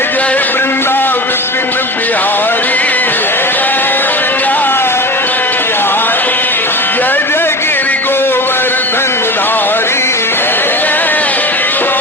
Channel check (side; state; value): both; normal; correlation 0.30